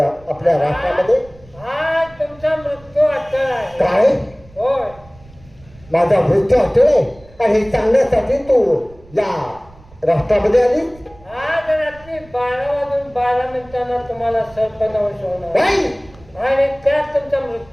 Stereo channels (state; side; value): noise; right; rumble, 25 dB below the sound